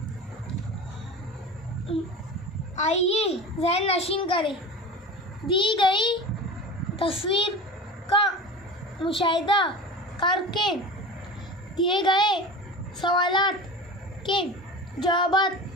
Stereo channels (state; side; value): normal; both; correlation 0.33